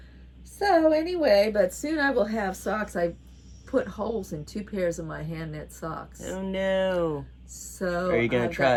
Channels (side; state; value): both; identical; correlation 1.00